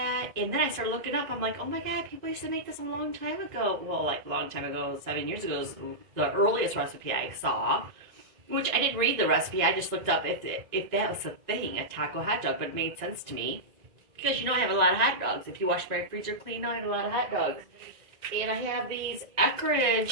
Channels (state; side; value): late; left; 1.9 ms